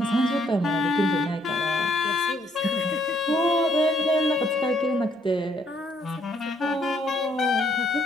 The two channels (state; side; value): normal; both; correlation 0.68